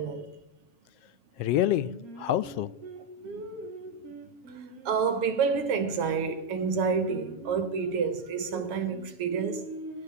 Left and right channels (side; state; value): left; late; 7.3 ms